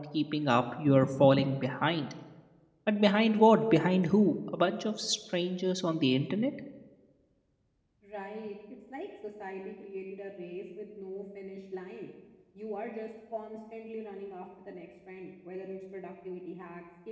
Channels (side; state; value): both; identical; correlation 1.00